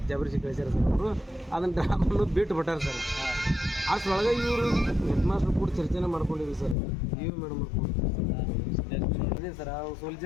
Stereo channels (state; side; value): drops out; right; at 6.8 s